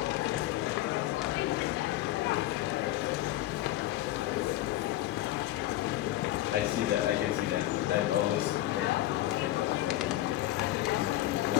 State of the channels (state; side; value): quieter; right; 15.1 dB